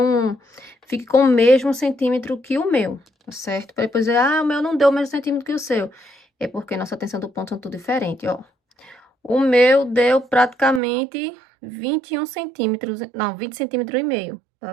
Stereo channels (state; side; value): drops out; left; at 10.8 s